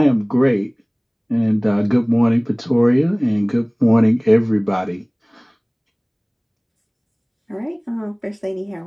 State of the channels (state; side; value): identical; both; correlation 1.00